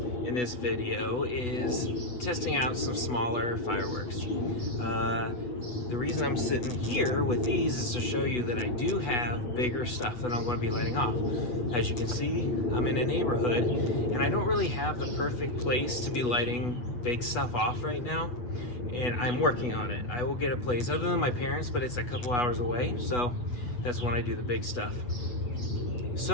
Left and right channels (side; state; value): right; late; 8.1 ms